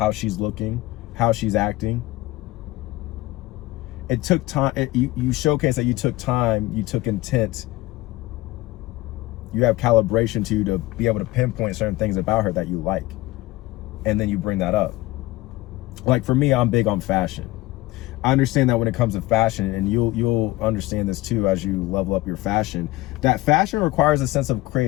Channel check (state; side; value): quieter; right; 18.6 dB